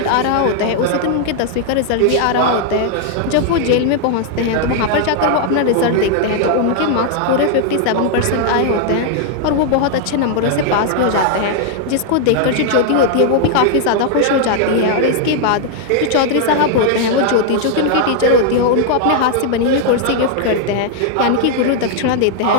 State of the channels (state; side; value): different; both; correlation 0.00